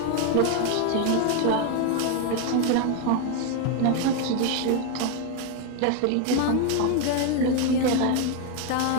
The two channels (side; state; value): both; different; correlation 0.01